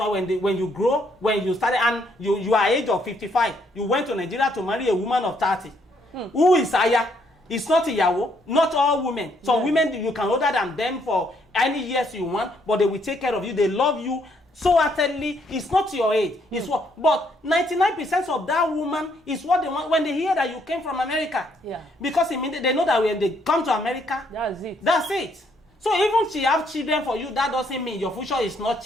when you grow, when you started, and you are age of 55, you went to Nigeria to marry a woman of 30. Who is Aya? It's not Iyawo. Not all women. Some women, you can older than them for any years you want, but they will take care of you. They love you so utterly. It's not your age. It's what. But 99% of that woman is what they want when they hear that you came from America. Because immediately they know that when they come to America, that's it. So even she have children for you, that doesn't mean your future is not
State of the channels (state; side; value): normal; both; correlation 0.70